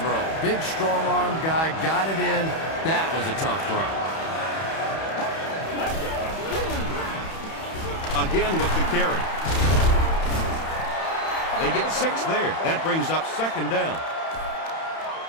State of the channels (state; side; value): late; right; 31 ms